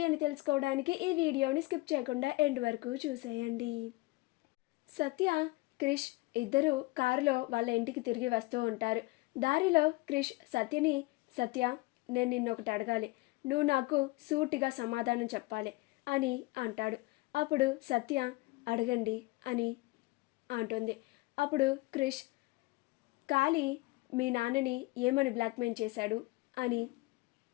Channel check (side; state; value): right; quieter; 22.0 dB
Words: అని తెలుసుకోవడానికి ఈ వీడియోని స్కిప్ చేయకుండా ఎండ్ వరకు చూసేయండి. సత్య, క్రిష్ ఇద్దరు కారులో వాళ్ళ ఇంటికి తిరిగి వస్తూ ఉంటారు. దారిలో క్రిష్ సత్యని, సత్య నేను నిన్నొకటి అడగాలి, నువ్వు నాకు సూటిగా సమాధానం చెప్పాలి అని అంటాడు. అప్పుడు సత్య అడగండి అని అంటుంది. అప్పుడు క్రిష్ కాళీ మీ నాన్నని ఏమని బ్లాక్మెయిల్ చేశాడు అని